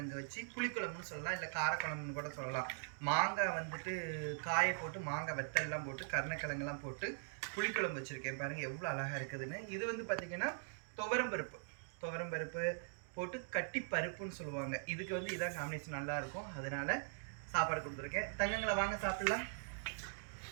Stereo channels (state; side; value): silent; left; digital silence